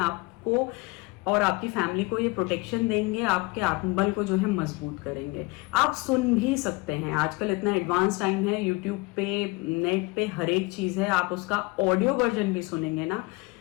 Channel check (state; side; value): quieter; right; 25.2 dB